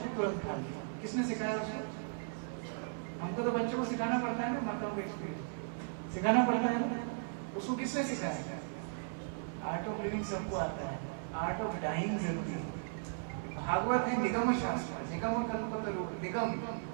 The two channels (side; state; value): left; silent; 53 dB below the other